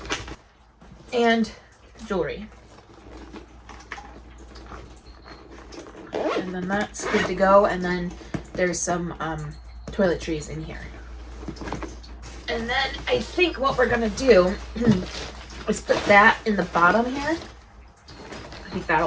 and jewelry. And then that's good to go, and then there's some toiletries in here. And then I think what we're gonna do is put that in the bottom here. I think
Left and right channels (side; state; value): both; identical; correlation 1.00